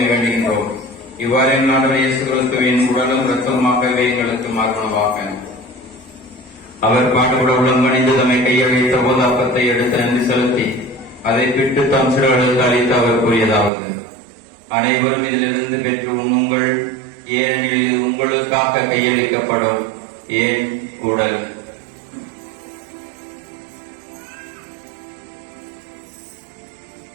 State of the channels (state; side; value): drops out; left; at 13.7 s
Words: இவ்வாறு ஆண்டவர் இயேசு கிறிஸ்துவின் உடலும் இரத்தமாகவே எங்களுக்கு மாறுவனவாக. அவர் பாடுபட உடம்பணிந்து தம்மை கையில் வைத்த போது அப்பத்தை எடுத்து நன்றி செலுத்தி அதை பிட்டு தம் சிறுகளுக்கு அளித்து அவர் கூறியதாவது: அனைவரும் இதிலிருந்து பெற்று உண்ணுங்கள், ஏனெனில் இது உங்களுக்காக கையளிக்கப்படும் ஏன் உடல்.